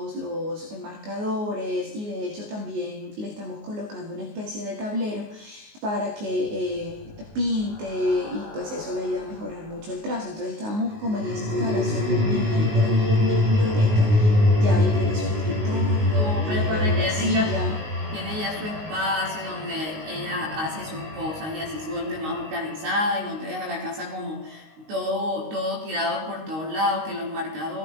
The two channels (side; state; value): left; late; 19 ms